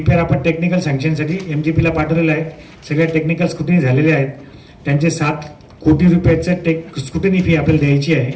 आपण टेक्निकल सँक्शनसाठी MGPला पाठवलेला आहे. सगळ्या टेक्निकल स्क्रुटिनी झालेले आहेत. त्यांचे 7 कोटी रुपयाचं स्क्रुटिनी फी आपल्याला द्यायची आहे.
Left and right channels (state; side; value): identical; both; correlation 1.00